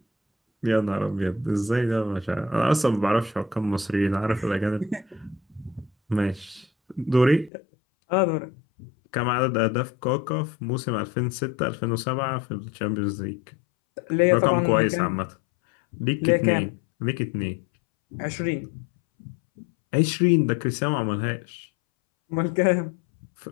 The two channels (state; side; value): drops out; right; at 7.5 s